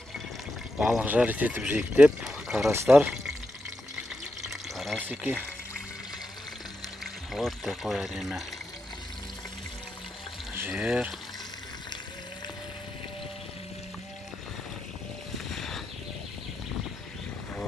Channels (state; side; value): normal; both; correlation 0.86